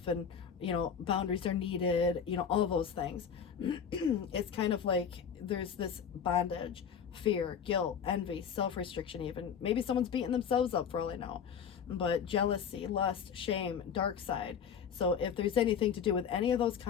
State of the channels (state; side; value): quieter; right; 7.4 dB